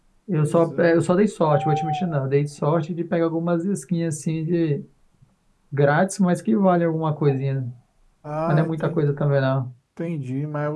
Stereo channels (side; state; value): both; identical; correlation 1.00